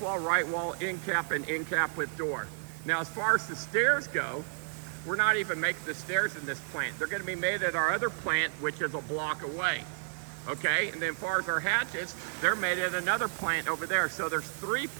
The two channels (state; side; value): silent; left; digital silence